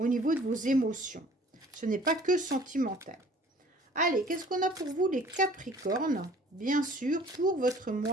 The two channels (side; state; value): both; normal; correlation 0.52